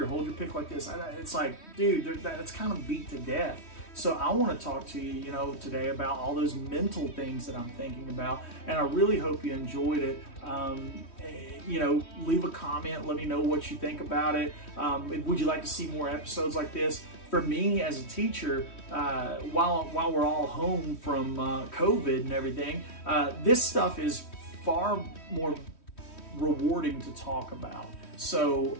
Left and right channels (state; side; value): late; right; 3.1 ms